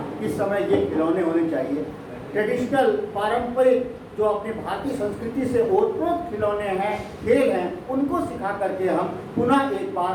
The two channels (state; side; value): identical; both; correlation 1.00